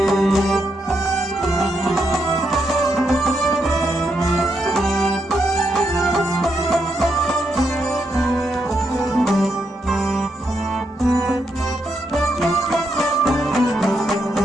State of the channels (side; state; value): both; normal; correlation 0.80